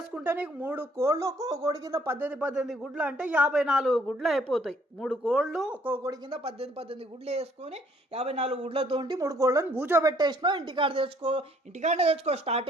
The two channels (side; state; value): both; normal; correlation 0.63